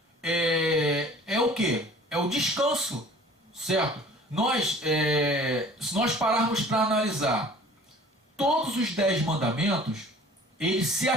é o quê? É o descanso. Certo? Se nós pararmos para analisar todos os 10 mandamentos, ele se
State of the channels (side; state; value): both; normal; correlation 0.48